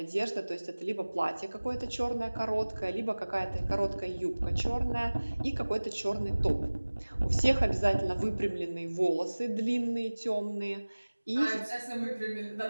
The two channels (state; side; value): inverted; both; correlation -1.00